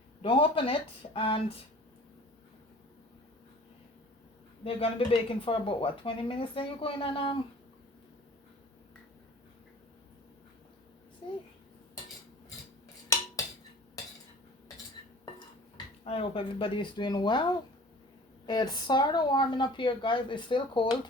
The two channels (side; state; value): both; normal; correlation 0.45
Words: don't open it, and they're gonna be baking for about what, 20 minutes. Then you go in and see. I hope everybody is doing well. It's sort of warming up here, guys. It's still cold.